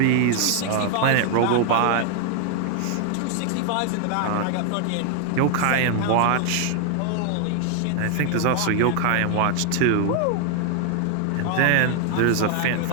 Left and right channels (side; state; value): both; different; correlation 0.00